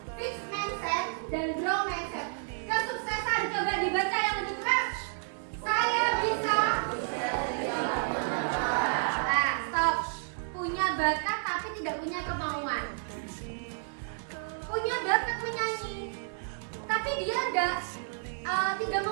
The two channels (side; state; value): left; silent; digital silence